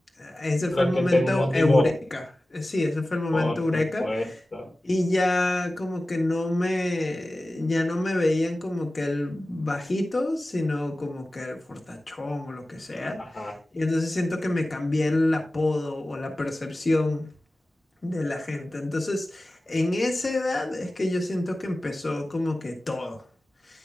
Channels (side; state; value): both; normal; correlation 0.96